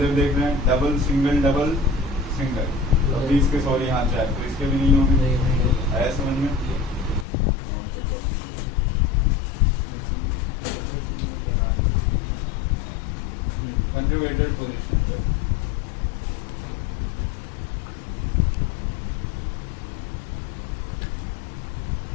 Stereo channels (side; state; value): right; drops out; at 7.2 s